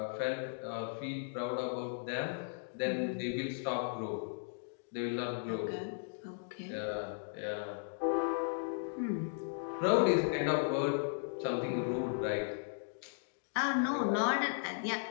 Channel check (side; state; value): right; silent; digital silence